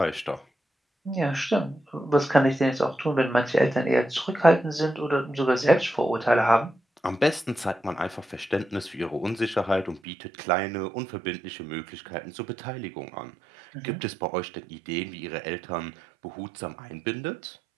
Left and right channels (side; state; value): left; drops out; at 10.0 s